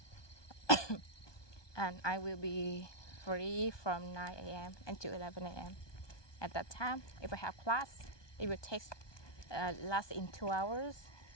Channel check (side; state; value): right; late; 1.2 ms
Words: And I will be free from 9 a.m. until 11 a.m. At that time, if I have class, it will take last in 2 hours.